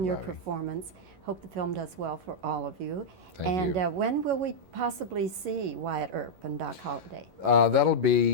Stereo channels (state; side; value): late; left; 11 ms